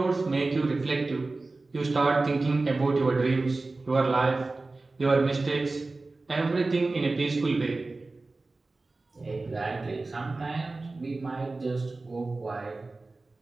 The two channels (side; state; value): left; quieter; 3.4 dB